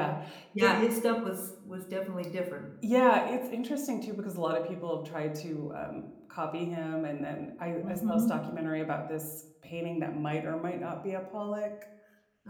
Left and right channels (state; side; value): identical; both; correlation 1.00